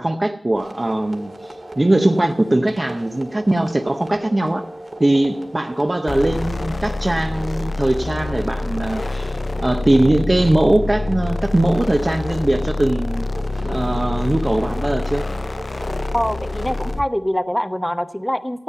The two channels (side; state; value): both; normal; correlation 0.98